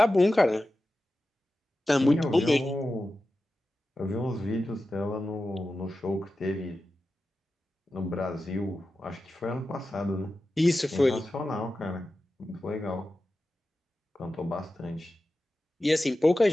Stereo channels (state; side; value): normal; both; correlation 0.93